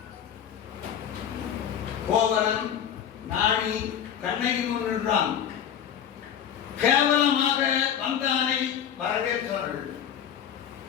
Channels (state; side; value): quieter; right; 9.0 dB